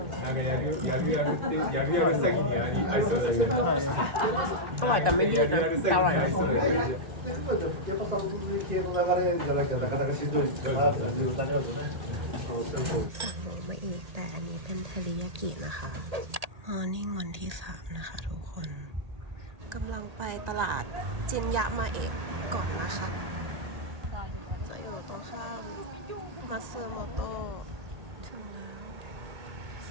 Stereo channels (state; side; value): late; left; 1.8 ms